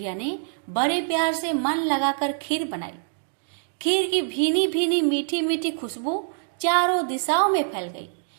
ने बड़े प्यार से मन लगाकर खीर बनाई। खीर की भीनी भीनी मीठी मीठी खुशबू चारों दिशाओं में फैल गई।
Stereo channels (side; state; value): left; silent; digital silence